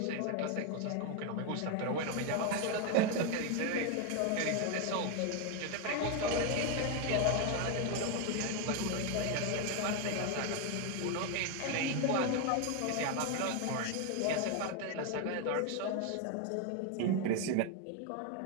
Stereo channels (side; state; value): both; different; correlation 0.01